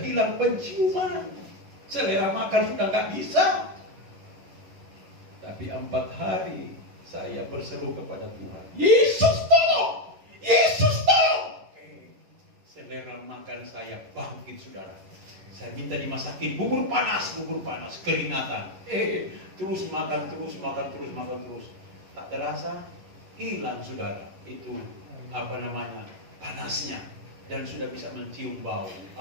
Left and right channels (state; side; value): late; left; 11 ms